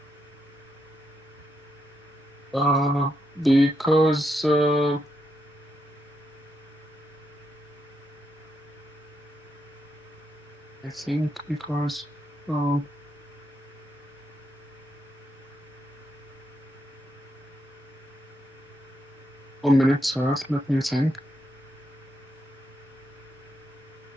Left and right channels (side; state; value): both; normal; correlation 0.81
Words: Because I think because 1 minute, sir. Let me think.